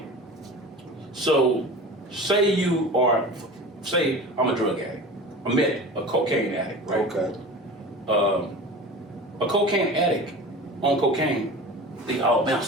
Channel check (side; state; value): both; normal; correlation 0.35